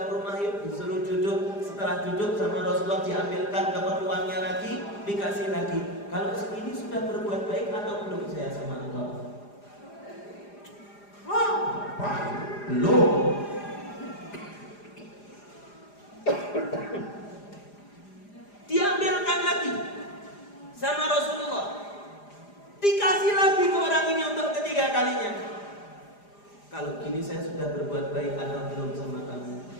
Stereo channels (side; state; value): right; late; 4.9 ms